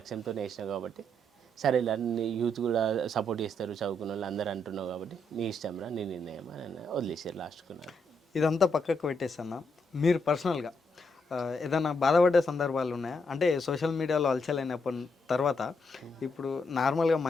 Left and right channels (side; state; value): both; normal; correlation 0.78